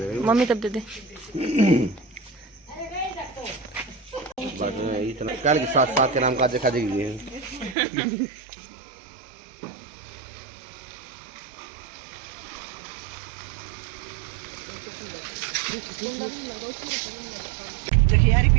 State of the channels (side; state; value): left; drops out; at 7.8 s